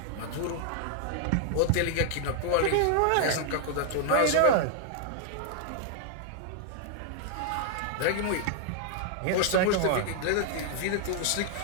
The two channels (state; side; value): different; both; correlation 0.00